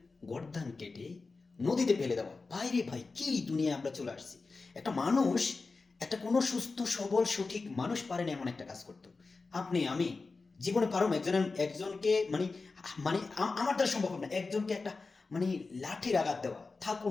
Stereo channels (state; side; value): quieter; right; 4.0 dB